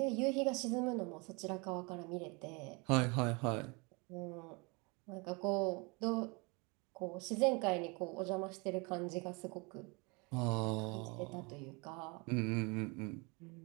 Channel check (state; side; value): quieter; left; 29.2 dB